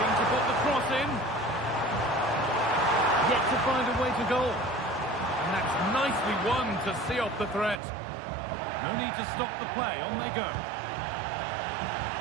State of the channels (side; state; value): left; drops out; at 7.8 s